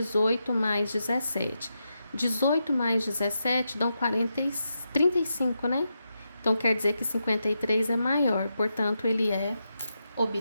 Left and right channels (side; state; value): both; inverted; correlation -0.86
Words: mais 17. 18 mais 17 dão 35, né? Então, quer dizer que 53 é maior, portanto, ele é